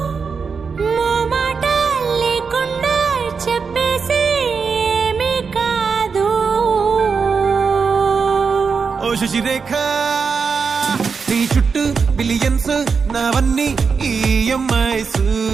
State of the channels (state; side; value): quieter; left; 5.4 dB